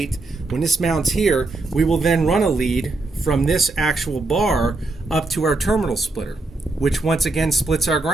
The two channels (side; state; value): left; quieter; 3.2 dB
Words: when this mounts here, we will then run a lead from this actual bar up to our terminal splitter, which once again splits our